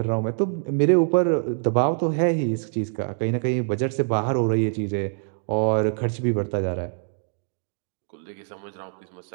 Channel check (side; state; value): left; silent; 62 dB below the other